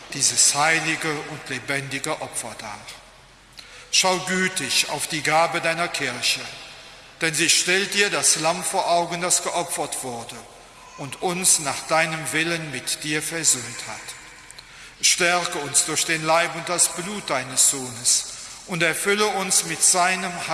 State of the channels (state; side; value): identical; both; correlation 1.00